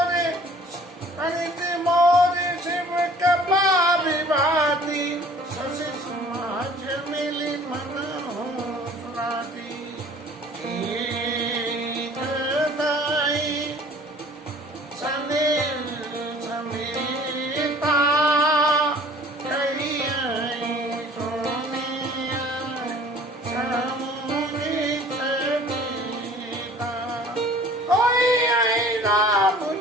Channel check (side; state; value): both; normal; correlation 0.50